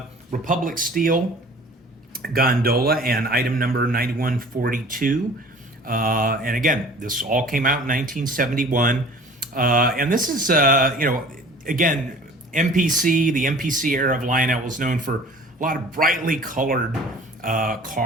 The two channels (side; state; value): both; normal; correlation 0.46